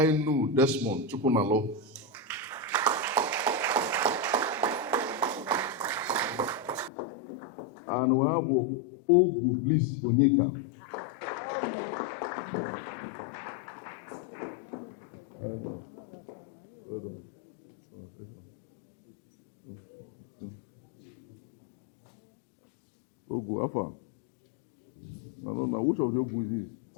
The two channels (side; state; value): right; drops out; at 6.9 s